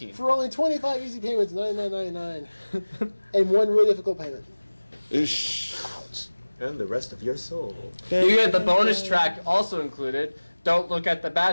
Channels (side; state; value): both; inverted; correlation -1.00